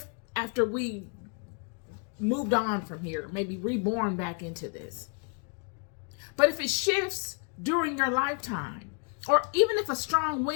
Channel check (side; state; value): right; quieter; 38.4 dB